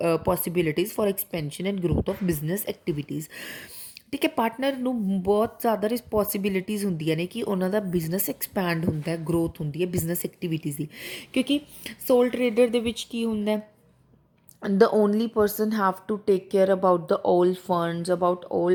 possibilities for expansion and growth of business activities। ਠੀਕ ਹੈ। Partner ਨੂੰ ਬਹੁਤ ਜ਼ਿਆਦਾ responsibilities ਹੁੰਦੀਆਂ ਨੇ ਕਿ ਉਹਨਾਂ ਦਾ business expand ਹੁੰਦਾ ਹੈ, ਗਰੋਥ ਹੁੰਦੀ ਹੈ ਬਿਜ਼ਨਸ ਐਕਟੀਵਿਟੀਜ਼ ਦੀ। ਕਿਉਂਕਿ ਸੋਲ ਟਰੇਡਰ ਦੇ ਵਿੱਚ ਕੀ ਹੁੰਦਾ, the only person have to take care about the all funds, about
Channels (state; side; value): identical; both; correlation 1.00